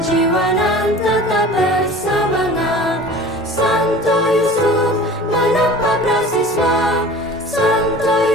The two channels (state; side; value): normal; both; correlation 0.41